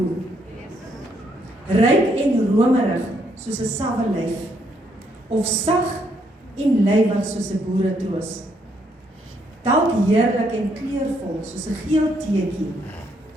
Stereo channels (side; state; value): both; normal; correlation 0.73